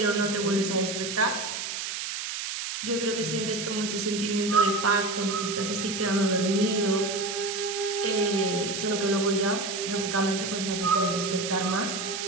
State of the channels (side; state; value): right; noise; hiss, 5 dB below the sound